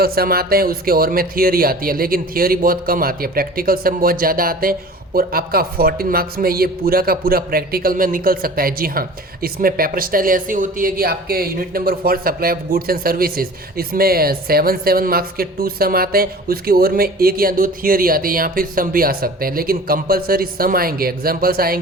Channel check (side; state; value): both; normal; correlation 0.42